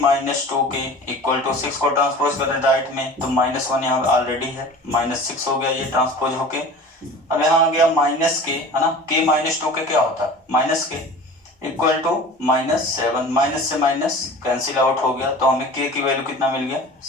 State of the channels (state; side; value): normal; both; correlation 0.39